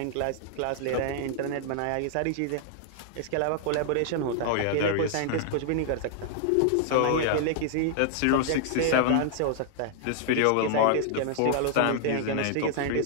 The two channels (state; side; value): different; both; correlation -0.01